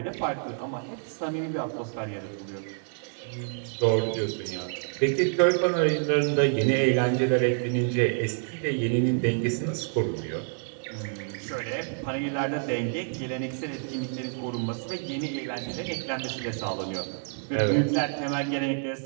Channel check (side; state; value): left; silent; 59 dB below the other